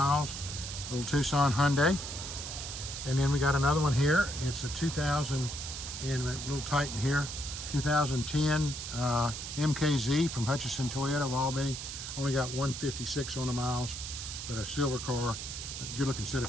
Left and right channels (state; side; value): noise; right; hiss, 7 dB below the sound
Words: Little Tucson Hyundai. And then we got another one here. It's a 2000, and a little Titan here, 2010 MKZ from Hutchinson Toyota of Albany. Only got 156 on the miles, but a silver car. Good looking set